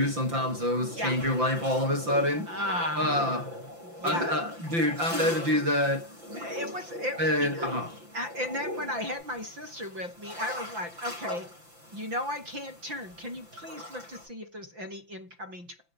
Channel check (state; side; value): late; left; 5.9 ms